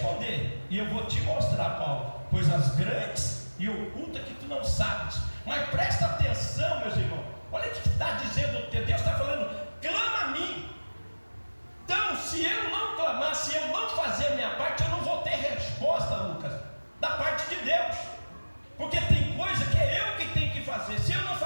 e eu vou te mostrar, Paulo, coisas grandes e ocultas que tu não sabes. Mas presta atenção, meus irmãos, olha o que está dizendo, Deus está falando, clama a mim. Então, se eu não clamar, se eu não fazer a minha parte, eu não vou ter resposta, Lucas, da parte de Deus, porque tem coisa que é eu que tenho que fazer. Se eu não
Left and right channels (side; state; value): both; inverted; correlation -1.00